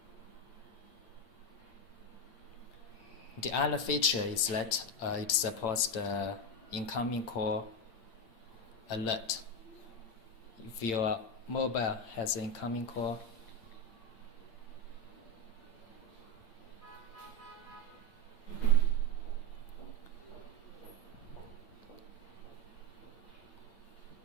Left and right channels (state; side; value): late; right; 8.7 ms